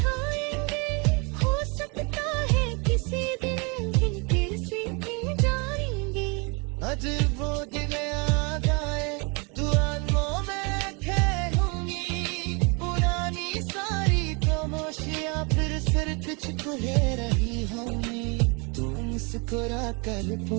हो सकता है किसी दिन फिर से जाएंगे। आज वो दिन आ जाए, दुआओं में खेलूंगी, पुरानी सारी खामोशियां फिर सिर तुझको ले रही होंगी। तू मुस्कुरा कर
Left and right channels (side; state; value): left; quieter; 31.3 dB